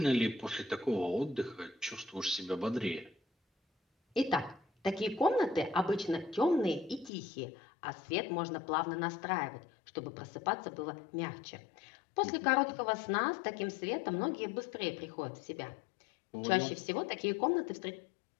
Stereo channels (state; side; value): drops out; right; at 7.1 s